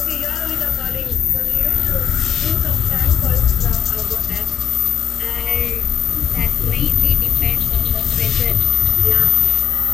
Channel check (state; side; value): quieter; right; 9.0 dB